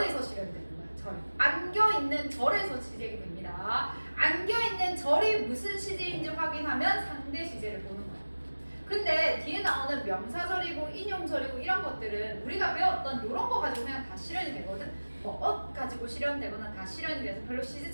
실현되는 거야. 절. 안겨 있는 절에서 시제가 됩니다. 안겨 있는 절이 무슨 시제인지 확인하면 상대 시제를 보는 거야. 근데 뒤에 나오는 명사절이고 인용절이고 이런 것들은 우리가 배웠던 이런 거 가지고 그냥 다 실현이 되거든. 뭐 가지고 실현되거나 다 실현이 돼서 별로 시제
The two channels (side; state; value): both; inverted; correlation -1.00